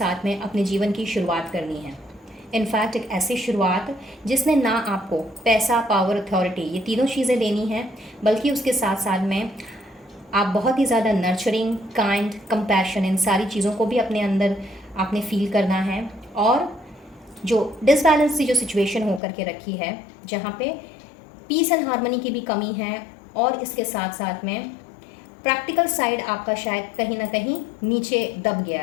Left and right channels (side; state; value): right; drops out; at 19.2 s